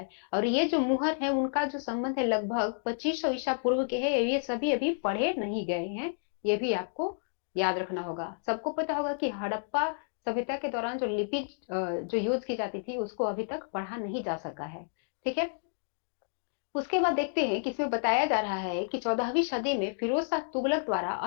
और ये जो मुहर है उनका जो संबंध है लगभग 2500 ईसा पूर्व के है, ये सभी अभी पढ़े नहीं गए हैं, ये भी आपको याद रखना होगा। सबको पता होगा कि हड़प्पा सभ्यता के दौरान जो लिपि जो यूज की जाती थी उसको अभी तक पढ़ा नहीं जा सका है। ठीक है, उसके बाद देखते हैं कि इसमें बताया जा रहा है कि 14वीं सदी में फिरोज शाह तुगलक द्वारा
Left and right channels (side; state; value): right; silent; digital silence